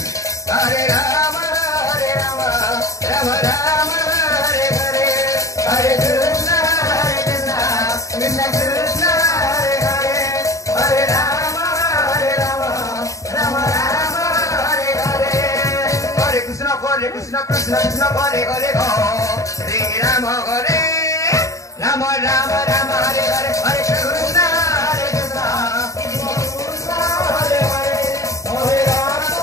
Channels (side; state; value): right; late; 0.16 ms